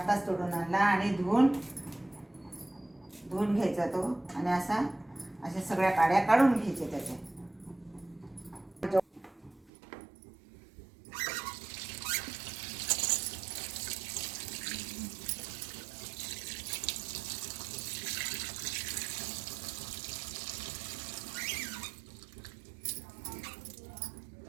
तोडून आणला आणि धुवून घ्यायचा तो आणि अशा सगळ्या काड्या काढून घ्यायच्या त्याच्या.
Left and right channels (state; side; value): drops out; left; at 9.7 s